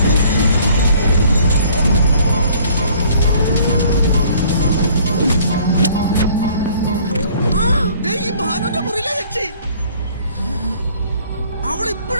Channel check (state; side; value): inverted; both; correlation -0.56